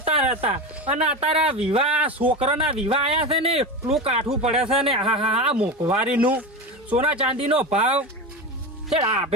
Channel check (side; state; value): both; normal; correlation 0.22